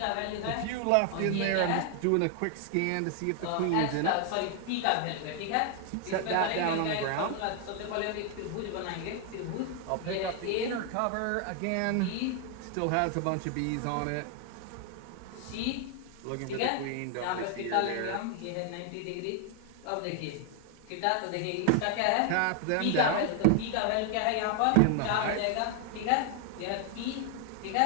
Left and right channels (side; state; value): both; different; correlation 0.00